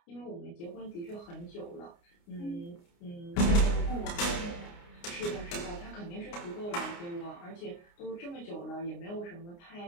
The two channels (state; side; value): late; right; 29 ms